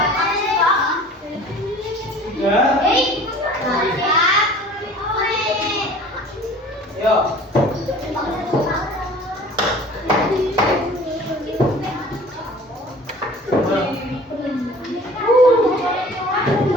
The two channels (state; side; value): normal; both; correlation 0.46